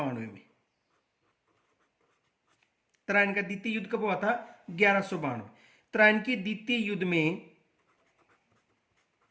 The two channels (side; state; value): both; identical; correlation 1.00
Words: में। त्राइन का द्वितीय युद्ध कब हुआ था? 1192। त्राइन के द्वितीय युद्ध में